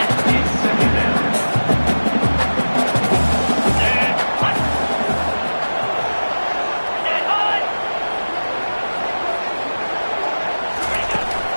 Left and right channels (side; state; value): both; inverted; correlation -1.00